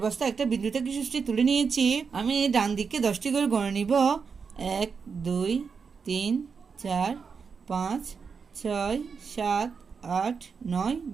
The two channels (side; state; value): left; quieter; 5.6 dB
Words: বস্তা একটা বিন্দু থেকে সৃষ্টি তুলে নিয়েছি। আমি ডান দিকে 10টি করে গণে নিব। 1 2 3 4 5 6 7 8 9